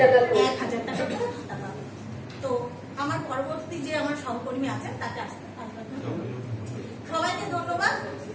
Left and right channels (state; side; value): identical; both; correlation 1.00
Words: টাকা করে। 1000 টাকা করে ভাতা পাবেন। তো আমার পরবর্তী যে আমার সহকর্মী আছেন তাকে আসতে সবাইকে ধন্যবাদ।